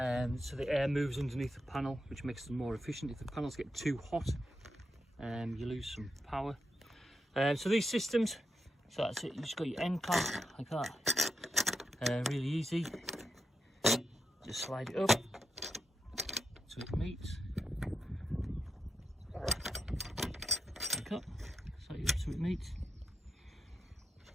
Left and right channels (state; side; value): normal; both; correlation 0.85